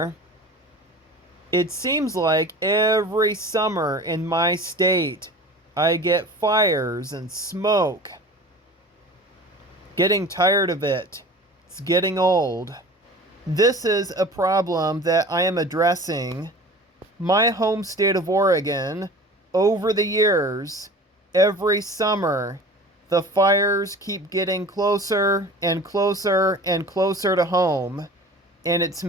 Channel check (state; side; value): normal; both; correlation 0.40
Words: It seems like every summer in my state, I get fires and smoke. Getting tired of it. It's getting old. This is a problem that I am addressing. My home state of Oregon, over the years, every summer, the fires keep getting closer and closer and closer to home, and it's